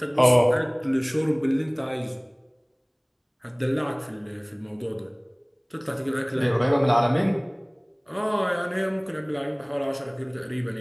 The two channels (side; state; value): both; identical; correlation 1.00